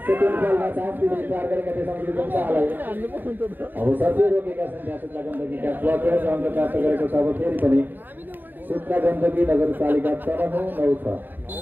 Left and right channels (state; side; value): late; left; 0.091 ms